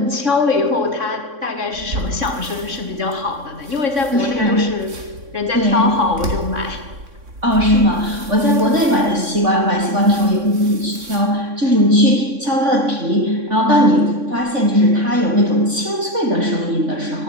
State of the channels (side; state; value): left; late; 3.6 ms